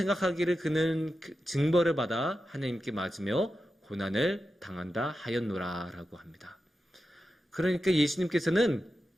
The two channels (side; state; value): both; normal; correlation 0.90